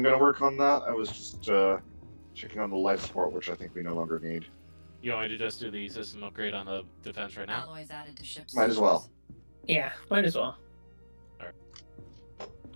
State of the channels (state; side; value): inverted; both; correlation -1.00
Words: gonna work on that. I was just checking on the life support, which I think we no longer need. you want me to just do the system upgrade on the defense right now? Alloys added to ship. Might as well. Yeah, might as well.